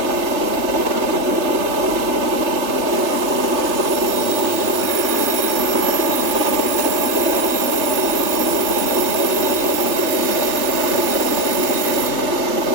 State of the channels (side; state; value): left; late; 3.3 ms